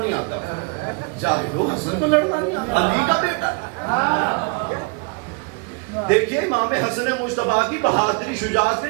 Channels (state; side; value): quieter; left; 32.2 dB